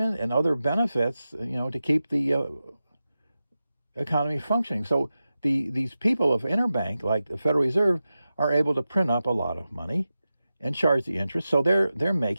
and other benefits, to keep the economy functioning. So these people of interbank, like the Federal Reserve, are able to print up a lot of money and charge the interest. So they're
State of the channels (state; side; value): inverted; both; correlation -0.92